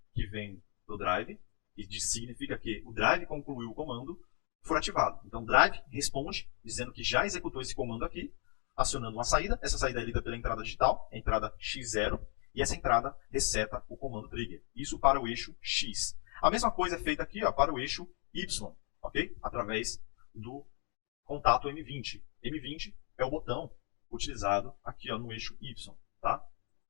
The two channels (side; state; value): right; quieter; 38.9 dB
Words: que vem do drive, e significa que o drive concluiu o comando, for ativado. Então o drive responde dizendo que já executou esse comando aqui, acionando uma saída. Essa saída é lida pela entrada digital, a entrada X0, E essa entrada reseta o comando trigger. Isso para o eixo X. A mesma coisa é feita aqui, ó, para o eixo Y, ok? Através do contato M20. M20 é o botão utilizado aqui, ó, no eixo Y, tá?